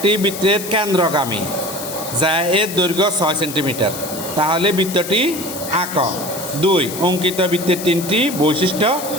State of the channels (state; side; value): noise; left; hiss, 9 dB below the sound